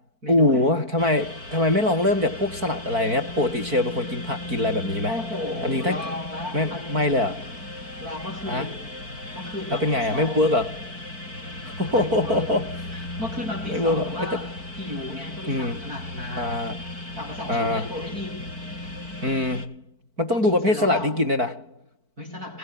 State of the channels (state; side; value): late; left; 4.5 ms